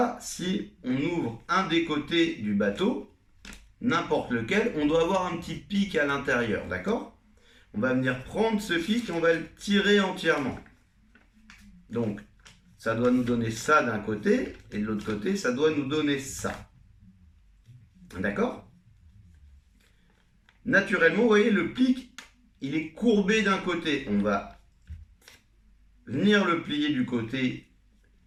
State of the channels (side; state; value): both; identical; correlation 1.00